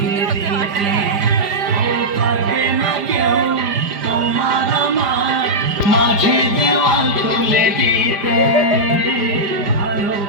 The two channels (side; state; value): left; late; 5.0 ms